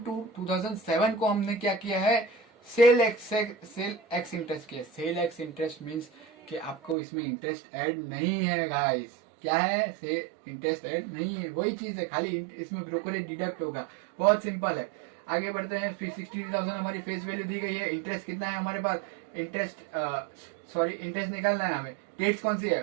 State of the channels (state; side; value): drops out; left; at 7.0 s